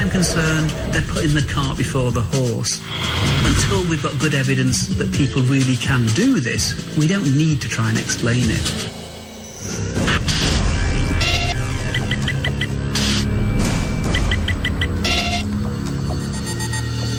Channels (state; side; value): identical; both; correlation 1.00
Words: concerned, they're putting the cart before the horse. Until we've got good evidence that people really can do this, we don't need to try and explain it.